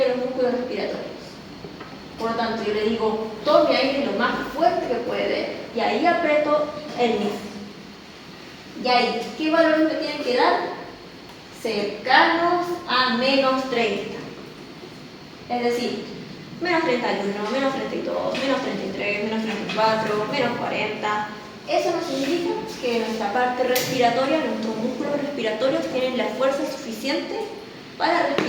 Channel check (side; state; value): both; identical; correlation 1.00